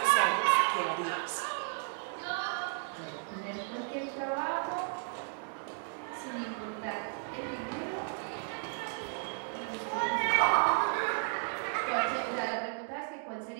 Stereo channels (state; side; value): silent; left; 55 dB below the other